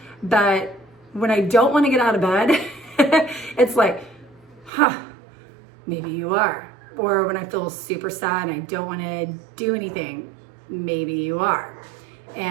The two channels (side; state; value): left; drops out; at 4.7 s